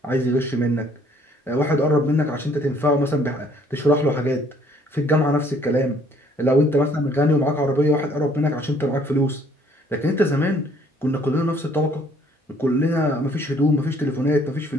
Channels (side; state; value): both; normal; correlation 0.61